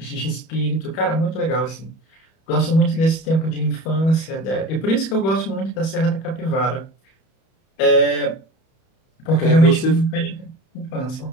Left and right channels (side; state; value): right; late; 31 ms